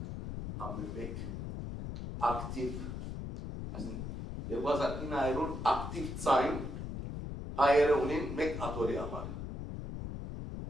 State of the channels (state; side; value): noise; left; rumble, 6 dB below the sound